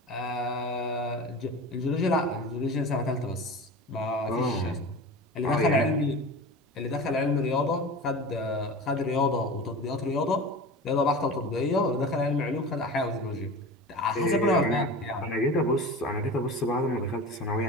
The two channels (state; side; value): normal; both; correlation 0.32